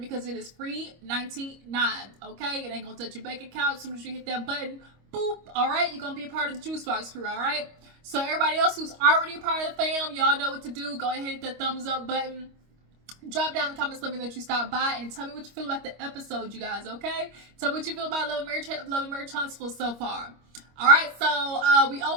it is free $99, okay? It ain't gonna touch your bank account as soon as you hit that button. Boop, all right? You're gonna be a part of the Juice Box crew, all right? So everybody else who's already a part of the fam, y'all know what to do. Go ahead and hit that thumbs up button. Drop down in the comments, let me know that you stopped by, and tell me what you feel about the episode, you guys, okay? Tell me what you feel about Love and Marriage Huntsville so far. All right, so we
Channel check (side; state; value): left; late; 25 ms